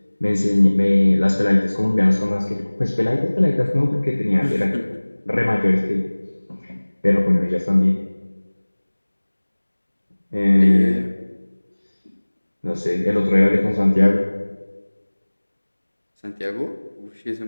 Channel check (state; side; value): inverted; both; correlation -1.00